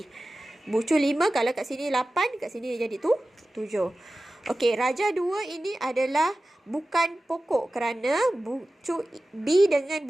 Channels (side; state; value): both; normal; correlation 0.95